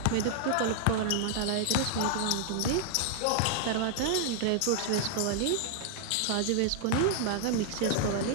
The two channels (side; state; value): both; different; correlation 0.00